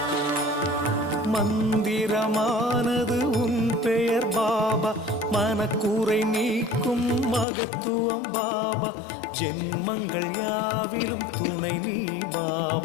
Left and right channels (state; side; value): drops out; right; at 7.5 s